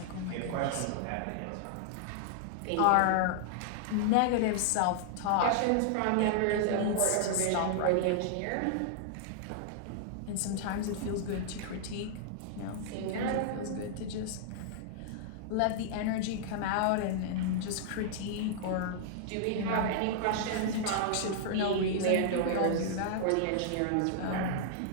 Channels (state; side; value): different; both; correlation -0.01